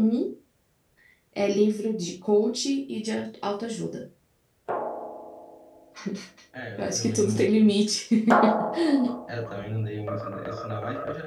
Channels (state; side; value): identical; both; correlation 1.00